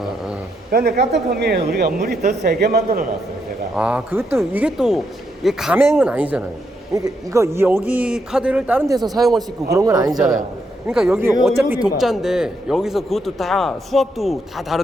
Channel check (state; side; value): normal; both; correlation 0.79